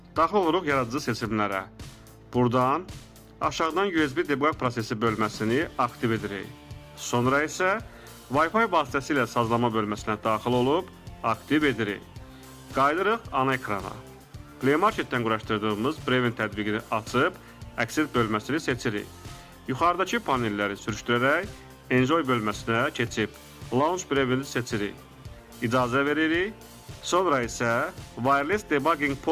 daxil oluruq yaradıcı seçimlərə. Buradan aşağıdan USB debug prosesi bölməsini aktiv edirik. Sonra isə Wi-Fi vasitəsilə sazlama bölməsinə daxil olub aktiv edirik. Qayıdırıq ana ekrana. Play Marketdən quraşdırdığımız Brevin tətbiqini açıb əksər bölməsini seçirik. Yuxarıdakı panelləri sürüşdürərək Enjoy bölməsinə keçib Launch Brevini seçirik. İcazə veririk. Sonra isə Wireless Debugging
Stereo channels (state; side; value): identical; both; correlation 1.00